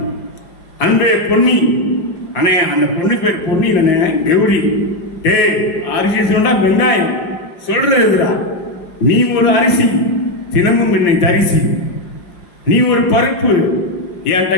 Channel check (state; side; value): late; right; 5.7 ms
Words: அன்பே பொன்னி. அண்ணே அந்த பொண்ணு பேர் பொன்னி இல்லைண்ணே, கௌரி. அரிசி சொன்னா வெங்காயம் சொல்றதுடா. நீ ஒரு அரிசி தினமும் என்னை தரிசி. நீ ஒரு பருப்பு என்கிட்ட